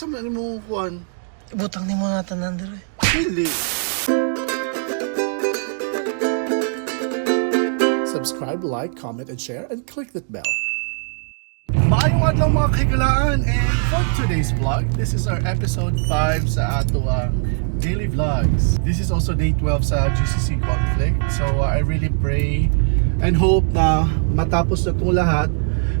man imong kuan? Butang ni mo natin nandere. Dili. Subscribe, like, comment, and share, and click that bell. Maayong adlaw mga kaigalaan, and for today's vlog, this is our episode 5 sa ato ang daily vlogs. This is also day 12 sa GCC conflict. So I really pray and hope na matapos na itong lahat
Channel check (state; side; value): silent; left; digital silence